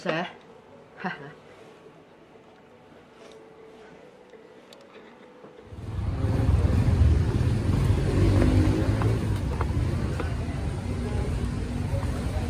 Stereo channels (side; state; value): both; identical; correlation 1.00